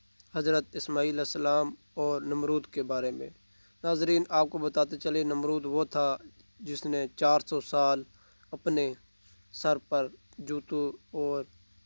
حضرت اسماعیل علیہ السلام اور نمرود کے بارے میں۔ ناظرین، آپ کو بتاتے چلے، نمرود وہ تھا جس نے 400 سال اپنے سر پر جوتوں اور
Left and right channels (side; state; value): both; inverted; correlation -1.00